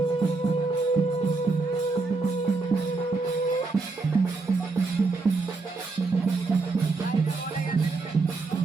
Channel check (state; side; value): quieter; left; 3.8 dB